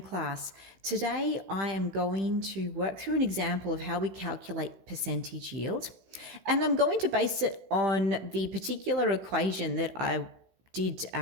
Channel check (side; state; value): left; late; 15 ms